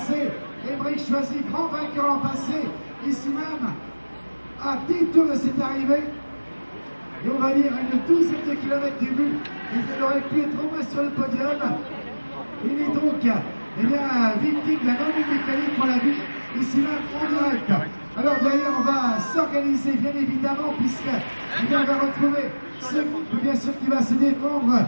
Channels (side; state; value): both; inverted; correlation -1.00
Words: Émeric Choisy, grand vainqueur l'an passé, ici même, à 10 tours de cette arrivée. Et on va dire une douzaine de kilomètres du but. Il aurait pu être au moins sur le podium. Il est donc eh bien, victime de la non-mécanique pour la vie. Ici même en direct. Alors derrière on va s'organiser bien évidemment puisque on va retrouver ce groupe bien sûr qui va se défendre